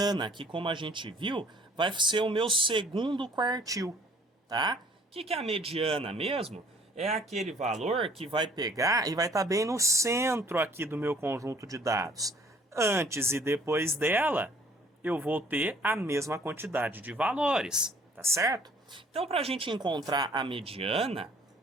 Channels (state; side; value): normal; both; correlation 0.57